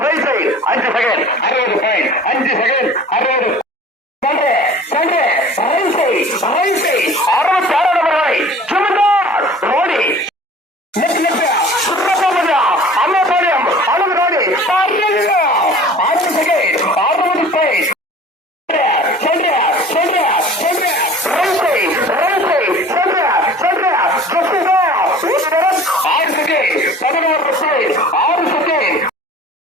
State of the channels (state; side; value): normal; both; correlation 0.45